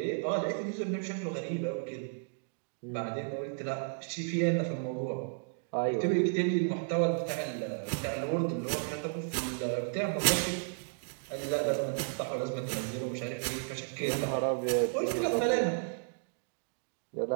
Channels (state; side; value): silent; left; digital silence